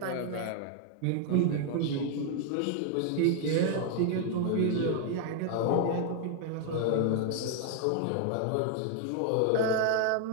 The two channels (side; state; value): both; different; correlation 0.00